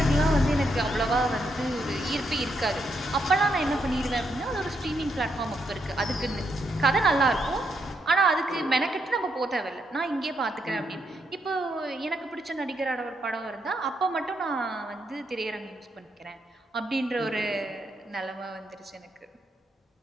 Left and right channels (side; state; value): both; normal; correlation 0.79